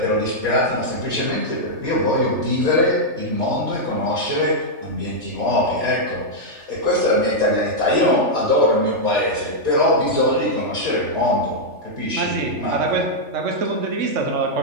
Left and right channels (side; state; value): left; late; 3.4 ms